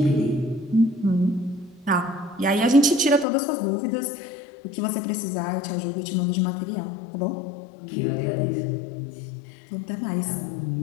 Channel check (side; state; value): right; drops out; at 3.2 s